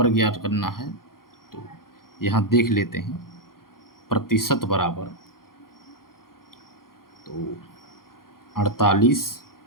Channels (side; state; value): right; late; 0.92 ms